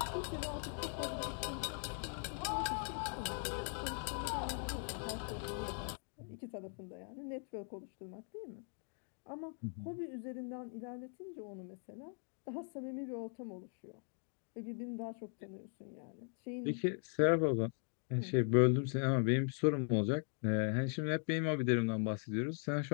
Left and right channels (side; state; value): right; silent; 51 dB below the other